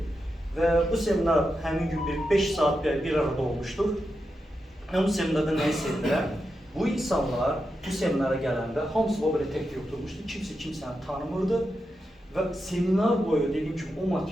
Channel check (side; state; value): both; normal; correlation 0.87